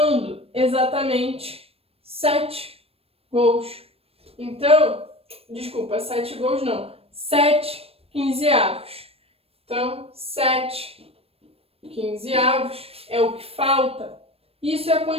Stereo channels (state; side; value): late; left; 0.28 ms